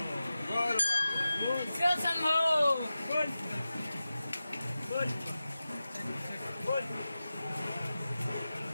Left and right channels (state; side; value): inverted; both; correlation -0.94